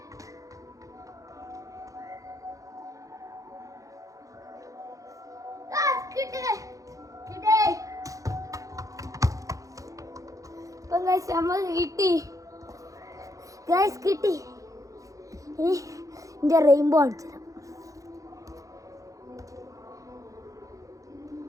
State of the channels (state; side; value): late; left; 0.16 ms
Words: നമ്മൾ കിട്ടി. ഗൈസ് കിട്ടി. ഇനി എൻ്റെ റെയിൻബോ അടിച്ചു തരാം.